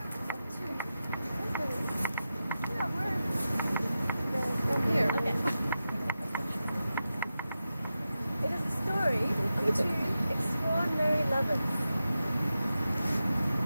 two. Yeah, we're here. Okay. It is the story of two extraordinary lovers.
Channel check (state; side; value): inverted; both; correlation -0.92